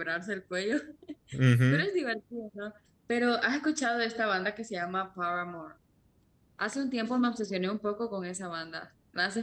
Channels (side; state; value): both; identical; correlation 1.00